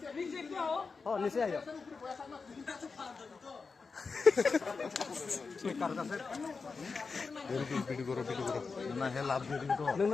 একটু आओ ও নিচে আইও কার কাছে ভিডিও করো না হে লাভ দিয়ে দিন তো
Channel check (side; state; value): right; quieter; 4.7 dB